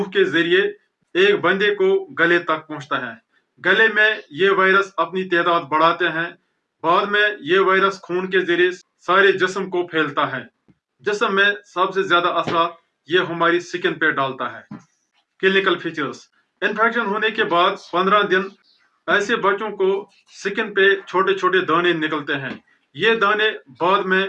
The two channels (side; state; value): both; identical; correlation 1.00